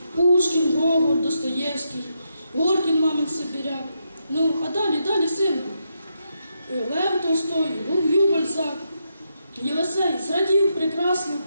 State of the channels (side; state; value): both; inverted; correlation -0.82